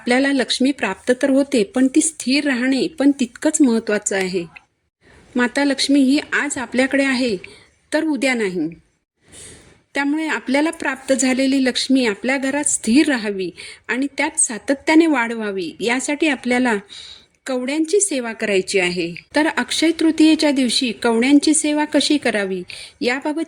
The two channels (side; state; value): both; identical; correlation 1.00